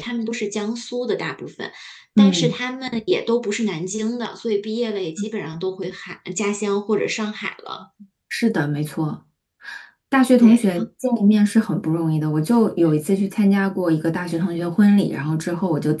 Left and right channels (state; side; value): identical; both; correlation 1.00